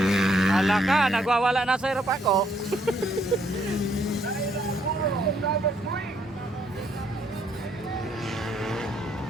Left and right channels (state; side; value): normal; both; correlation 0.70